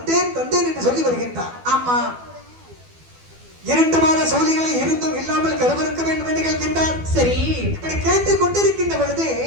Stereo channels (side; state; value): left; late; 12 ms